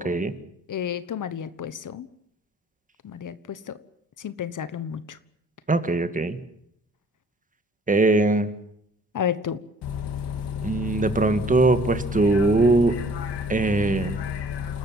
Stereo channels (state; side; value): normal; both; correlation 0.55